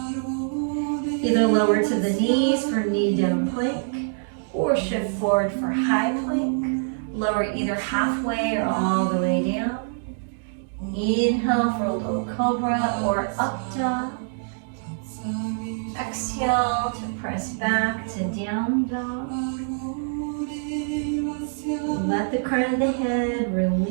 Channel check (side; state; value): left; silent; digital silence